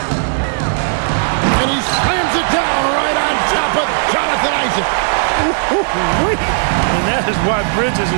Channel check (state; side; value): silent; left; 62 dB below the other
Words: And he slams it down right on top of Jonathan Isaac. And that is why Bridges